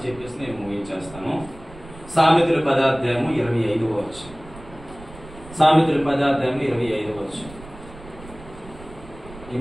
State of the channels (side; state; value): right; noise; rumble, 18 dB below the sound